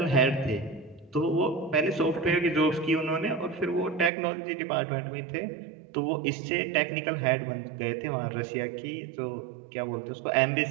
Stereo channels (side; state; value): left; drops out; at 4.1 s